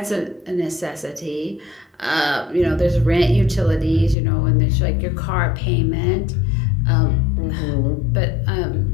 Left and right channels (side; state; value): right; drops out; at 4.2 s